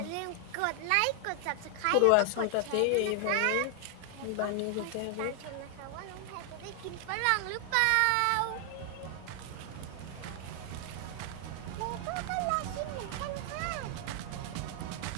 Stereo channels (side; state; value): both; different; correlation 0.00